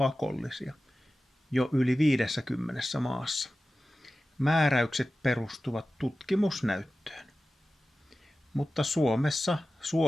jo yli 50 maassa. Määräykset perustuvat tutkimusnäyttöön. Mutta Suomessa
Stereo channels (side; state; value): both; normal; correlation 0.94